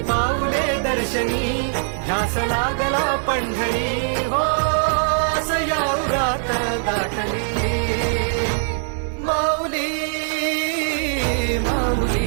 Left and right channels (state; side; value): silent; left; digital silence